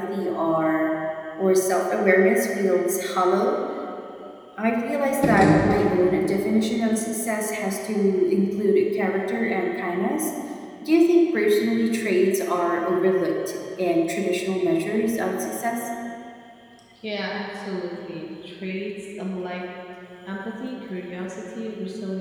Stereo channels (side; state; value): both; identical; correlation 1.00